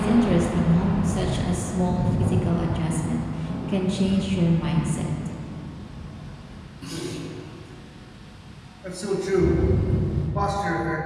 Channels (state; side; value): identical; both; correlation 1.00